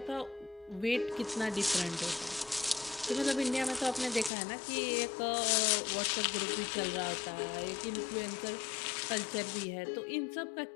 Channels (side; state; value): right; drops out; at 4.3 s